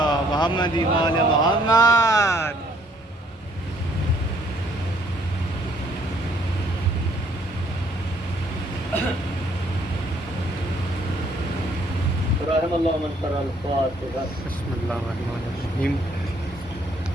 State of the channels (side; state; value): both; normal; correlation 0.64